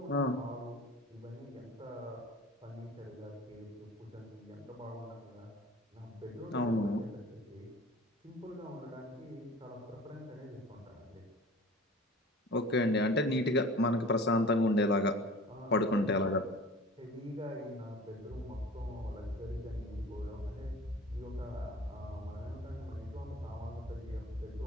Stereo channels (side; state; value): both; normal; correlation 0.42